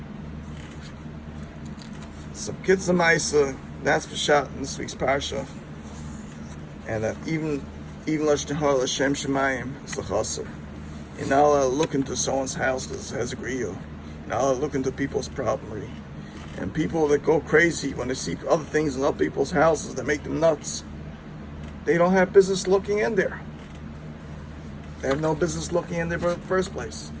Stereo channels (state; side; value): identical; both; correlation 1.00